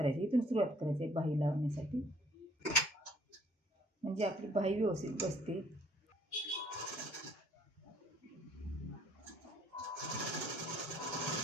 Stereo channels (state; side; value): normal; both; correlation 0.61